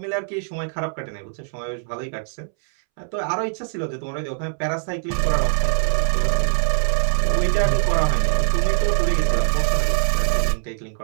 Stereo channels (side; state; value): left; silent; 64 dB below the other